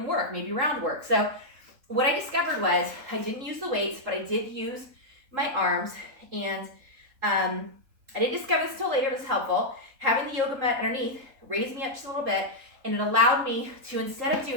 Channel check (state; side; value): late; left; 3.8 ms